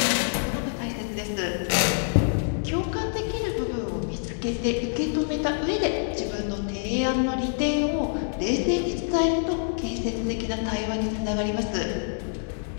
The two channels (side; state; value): right; silent; digital silence